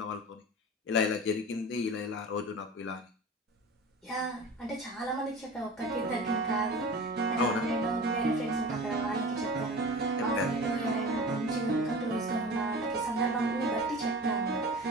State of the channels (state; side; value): normal; both; correlation 0.35